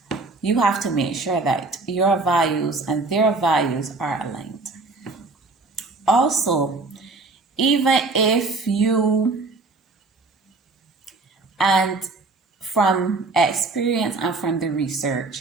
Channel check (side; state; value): left; quieter; 3.6 dB